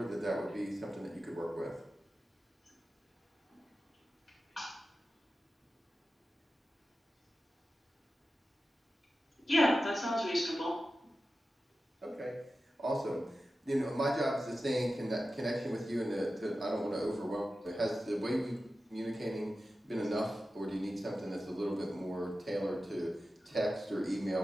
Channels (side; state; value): both; normal; correlation 0.93